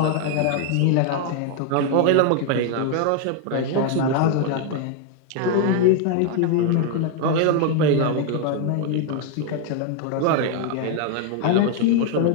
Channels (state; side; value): different; both; correlation 0.00